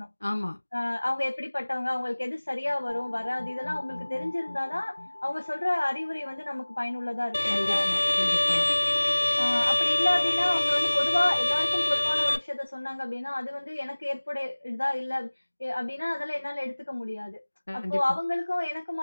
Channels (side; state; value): both; inverted; correlation -1.00